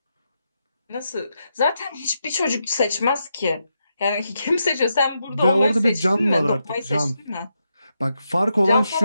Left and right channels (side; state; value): both; inverted; correlation -0.84